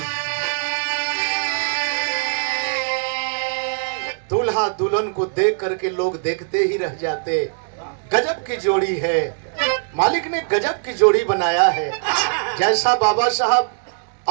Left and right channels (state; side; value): silent; left; digital silence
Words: दूल्हा दुल्हन को देख करके लोग देखते ही रह जाते। गजब की जोड़ी है, मालिक ने गजब की जोड़ी बनाया है। जैसा बाबा साहब